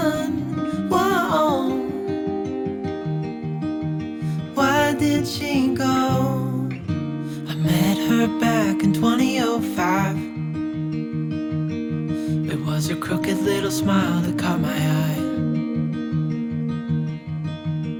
Whoa, why did she go? I met her back in 2005. It was her crooked little smile that caught my eye.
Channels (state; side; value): identical; both; correlation 1.00